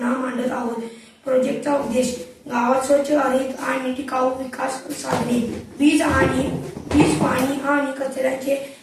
मांडत आहोत. प्रोजेक्टचा उद्देश गावात स्वच्छ, हरित आणि टिकाऊ विकास साधणे, वीज, पाणी आणि कचऱ्याचे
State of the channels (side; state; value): both; identical; correlation 1.00